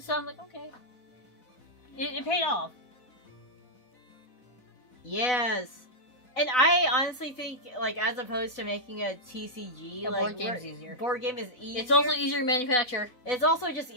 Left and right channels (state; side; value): late; right; 4.1 ms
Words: so I'm like, okay. It paid off. Yes. And I honestly think, like, as opposed to making a TCG, A like, board game's easier. Board game is easier. It's also easier to manufacture. It's also just